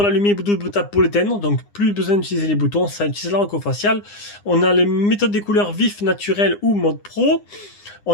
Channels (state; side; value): late; right; 9.8 ms